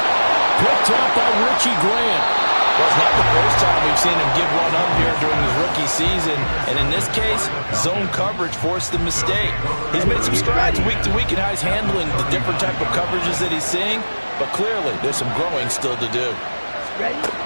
Picked up by Richie Grant. Well, it's not the first time we've seen him give one up here during his rookie season. And in this case, zone coverage forced the mistake. He's made some strides week to week in how he's handling the different type of coverages that he's seeing. But clearly, there's some growing still to do. Ready?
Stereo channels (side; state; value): both; inverted; correlation -1.00